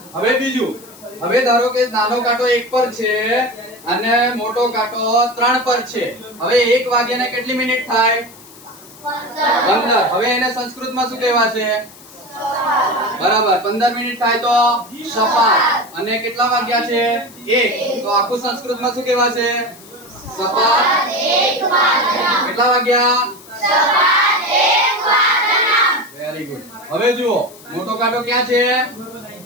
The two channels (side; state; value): left; noise; hiss, 21 dB below the sound